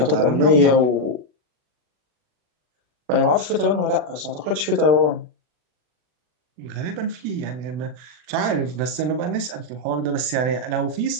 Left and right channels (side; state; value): left; late; 40 ms